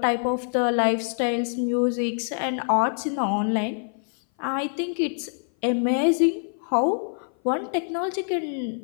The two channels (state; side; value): silent; right; 57 dB below the other